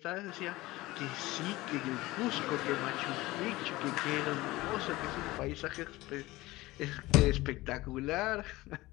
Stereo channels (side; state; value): right; quieter; 19.3 dB